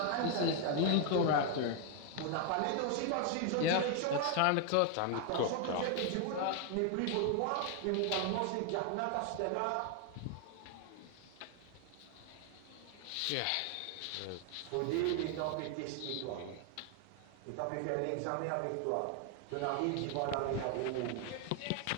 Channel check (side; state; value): both; different; correlation 0.00